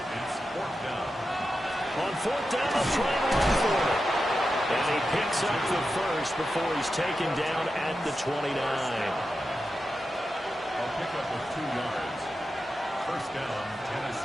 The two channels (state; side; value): normal; both; correlation 0.90